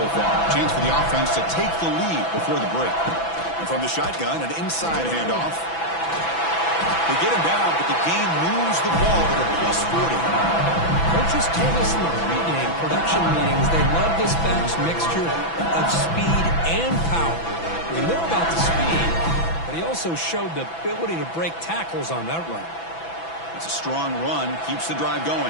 far. Chance for the offense to take the lead before the break. And from the shotgun, an inside handoff. They get him down, but the game moves the ball to the +40. Coaches told us in the pregame production meetings they love this back's mixture of speed and power. We know about the speed, but he also showed the ability to break tackles on that run. It's a strong run, keeps the drive going.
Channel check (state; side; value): late; right; 6.0 ms